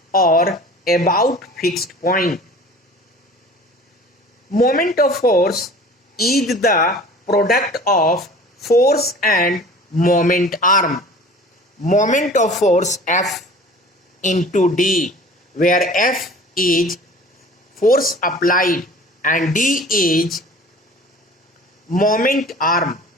or about fixed point. Moment of force is the product of force and moment arm. Moment of force F into D, where F is force applied and D is moment arm.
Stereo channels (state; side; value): normal; both; correlation 0.44